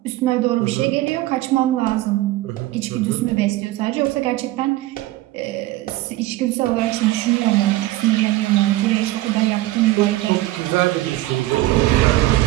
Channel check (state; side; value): quieter; left; 17.1 dB